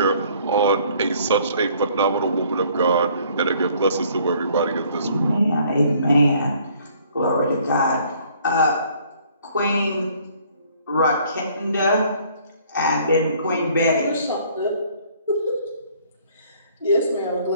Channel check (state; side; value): inverted; both; correlation -0.59